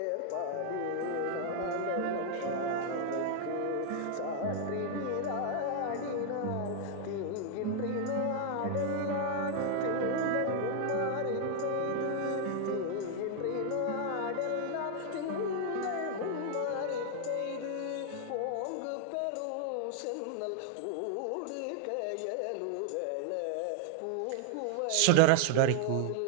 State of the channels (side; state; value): both; different; correlation 0.00